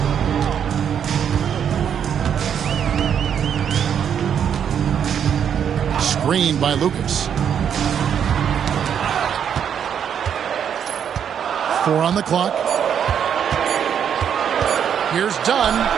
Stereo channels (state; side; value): quieter; left; 8.3 dB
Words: Screened by Lucas. 4 on the clock. Here's Dunn.